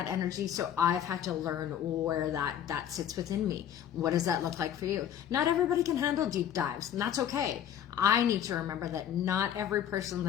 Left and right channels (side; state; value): right; quieter; 9.8 dB